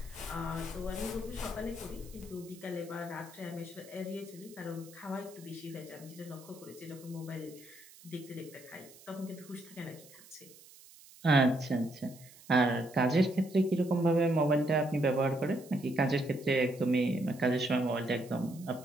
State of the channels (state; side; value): noise; right; hiss, 22 dB below the sound